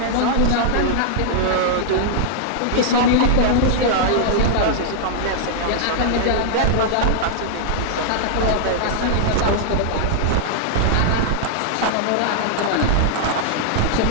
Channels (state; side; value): different; both; correlation -0.01